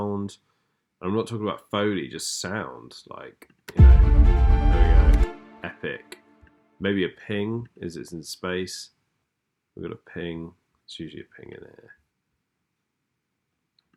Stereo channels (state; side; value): identical; both; correlation 1.00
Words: I'm not talking about Foley, just sound. Like, you know, there we go. Epic. Maybe a ping. Is it's in space? We've got a ping. It's usually a ping in here.